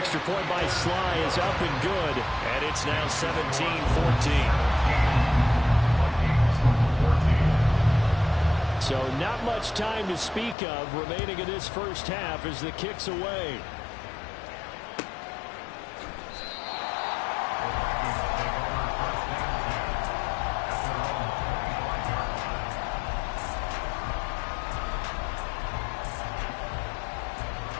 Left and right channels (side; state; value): right; drops out; at 10.6 s